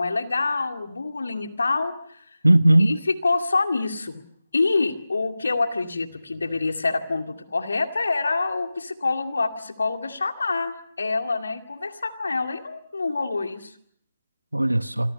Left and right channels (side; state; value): both; inverted; correlation -0.95